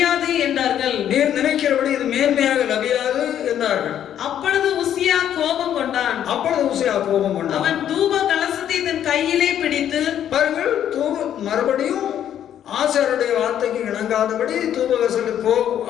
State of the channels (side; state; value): right; quieter; 10.2 dB